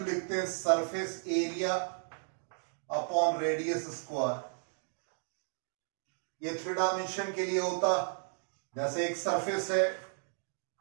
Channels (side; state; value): left; silent; digital silence